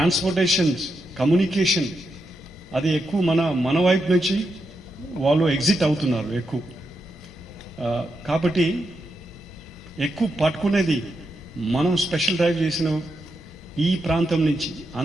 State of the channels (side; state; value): both; normal; correlation 0.84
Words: communication అది ఎక్కువ మన వైపు నుంచి వాళ్ళు ఎగ్జిట్ అవుతున్నారు ఎక్కువ. కాబట్టి ఎక్కువ పట్టుకునేది మనం స్పెషల్ డ్రైవ్ చేసిన ఈ ప్రాంతం నుంచి